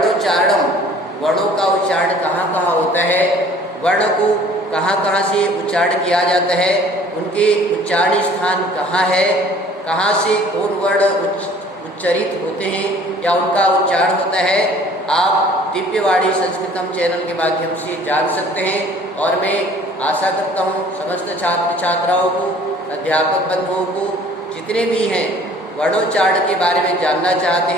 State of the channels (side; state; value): both; normal; correlation 0.52